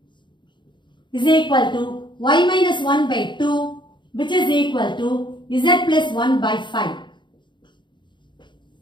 is equal to y minus 1 by 2, which is equal to z plus 1 by 5.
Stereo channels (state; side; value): late; right; 0.23 ms